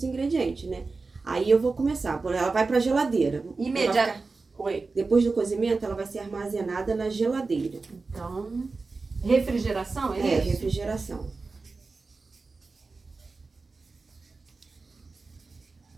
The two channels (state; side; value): quieter; left; 4.0 dB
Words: ingredientes, né? Aí eu vou começar. Ela vai para a geladeira. Oi. Depois do cozimento, ela vai ser armazenada na geladeira. Então, refrigeração, é isso? Refrigeração.